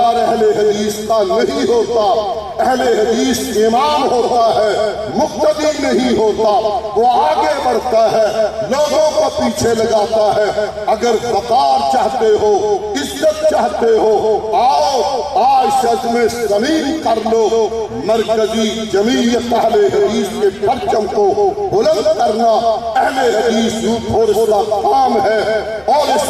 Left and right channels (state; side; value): noise; left; rumble, 29 dB below the sound